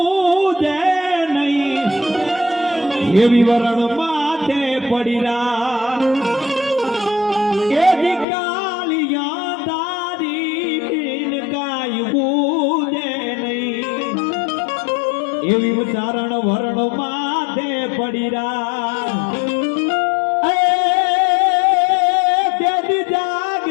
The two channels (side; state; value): right; drops out; at 8.2 s